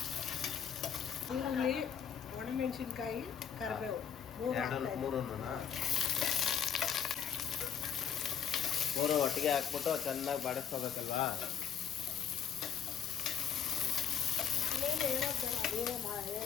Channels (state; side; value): quieter; right; 8.4 dB